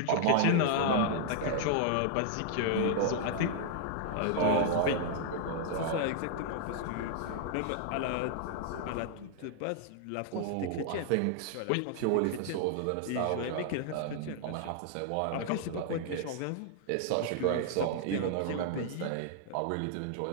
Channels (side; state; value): both; different; correlation -0.01